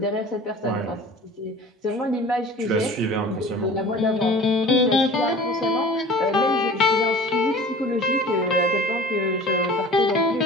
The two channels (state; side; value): normal; both; correlation 0.42